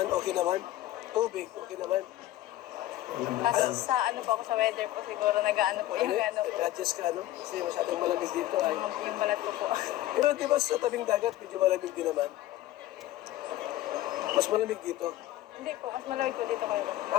okay naman. Tubig, okay naman. Kasi sa ano po ako sa weather po siguro nag-ano po yung ano po. Nag-adjust ka, no? Kasi masyadong malamig dito ay. Yung balat ko po. Pero di ba sa tabing dagat, medyo malamig din naman? Mas malamig dito. Hindi po, mas malamig po dito kayo.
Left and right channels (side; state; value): right; quieter; 14.9 dB